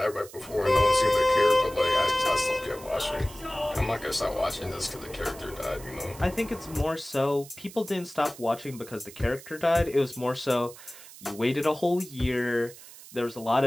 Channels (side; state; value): right; noise; hiss, 18 dB below the sound